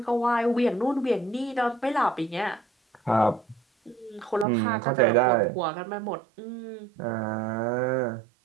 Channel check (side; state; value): left; drops out; at 4.5 s